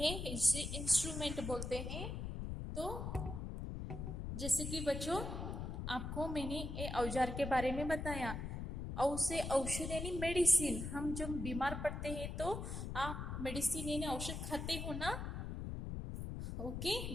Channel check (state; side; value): noise; left; rumble, 4 dB below the sound